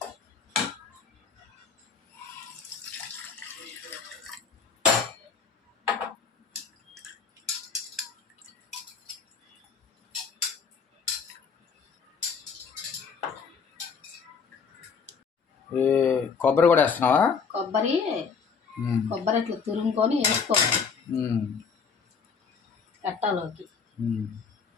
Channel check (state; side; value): quieter; right; 5.8 dB